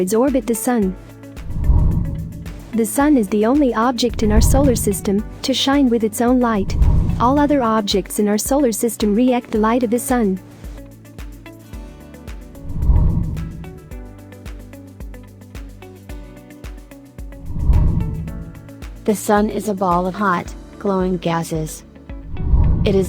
orbit the Sun. The Sun is the only object in our solar system to shine with its own light. All other objects in our solar system react the light of the Sun. The Sun is a ball of hot, glowing gases. It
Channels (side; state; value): both; identical; correlation 1.00